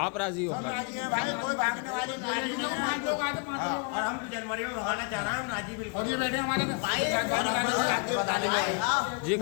आप राजी हो? भाई कोई भागने वाली और हम जनवरी में भगाना चाह रहे हैं, हम राजी बिल्कुल। और ये बैठे हमारे जी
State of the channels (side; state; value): right; quieter; 34.3 dB